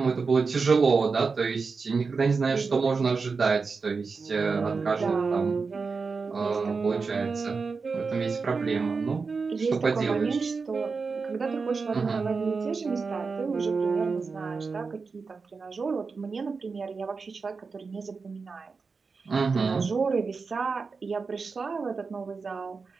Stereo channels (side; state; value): left; quieter; 4.7 dB